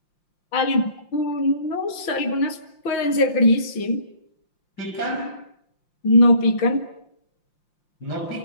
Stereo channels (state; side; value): late; right; 5.7 ms